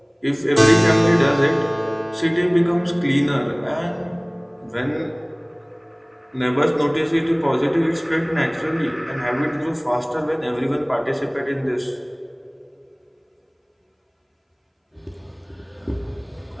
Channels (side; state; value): both; identical; correlation 1.00